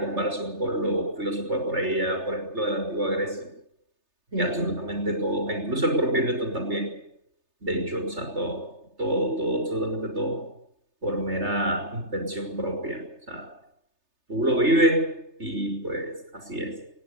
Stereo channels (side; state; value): left; late; 3.3 ms